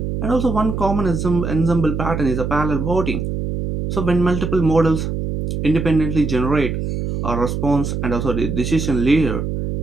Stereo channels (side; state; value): right; noise; hum, 3 dB below the sound